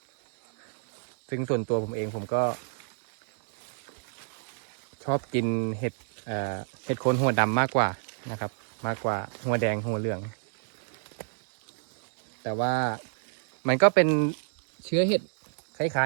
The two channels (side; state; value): left; silent; digital silence